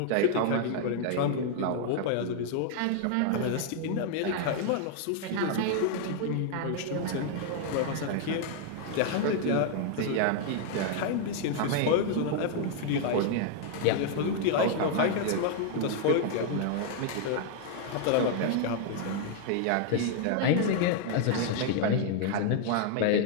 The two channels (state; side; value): different; both; correlation 0.00